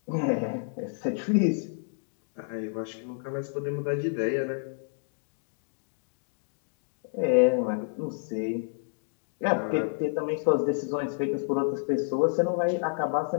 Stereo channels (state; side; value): silent; right; digital silence